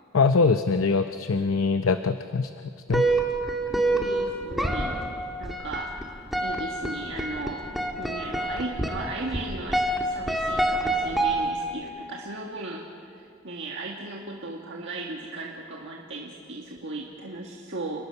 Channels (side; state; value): both; normal; correlation 0.42